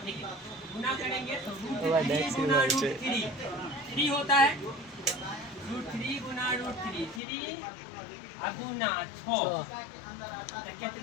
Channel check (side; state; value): right; drops out; at 7.2 s